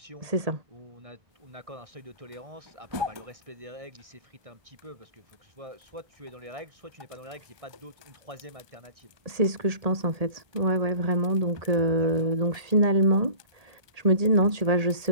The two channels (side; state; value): left; late; 1.3 ms